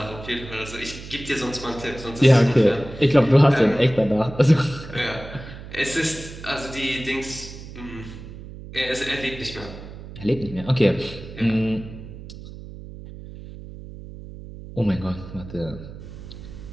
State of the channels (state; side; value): noise; right; hum, 13 dB below the sound